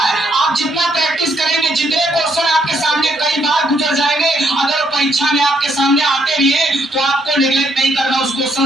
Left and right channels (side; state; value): both; normal; correlation 0.72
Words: आप जितना प्रैक्टिस करेंगे, जितने क्वेश्चन आपके सामने कई बार गुजर जाएंगे, अगर परीक्षा में आपके सामने आते भी है तो आपको नेग्लेक्ट नहीं करना, उस